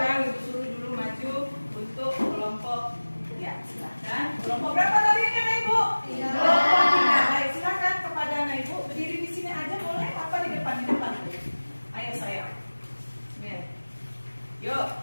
ibu suruh dulu maju untuk kelompok. Ya, silakan. Kelompok berapa tadi ini anak ibu? Kelompok 3. Baik, silakan kepada anak ibu berdiri di sini aja boleh? Apa di depan? Di depan. Ayo sayang. Nih. Yuk.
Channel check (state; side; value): inverted; both; correlation -1.00